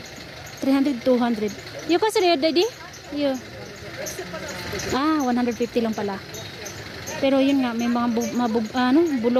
200. Yung kasi rin, daddy? Yung. 150 lang pala. Pero yun nga, may mga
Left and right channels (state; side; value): identical; both; correlation 1.00